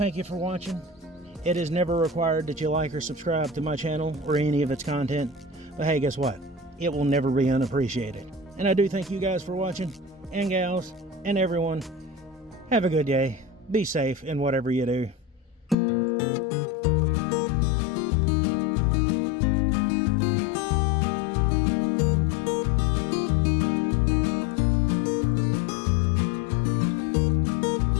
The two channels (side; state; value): right; drops out; at 15.8 s